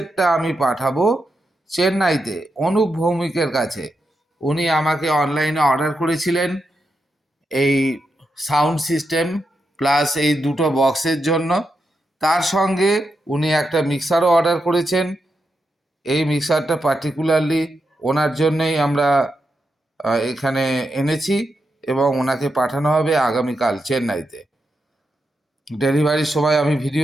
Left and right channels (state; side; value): normal; both; correlation 0.86